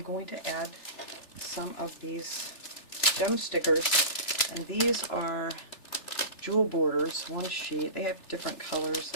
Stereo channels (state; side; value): late; right; 3.3 ms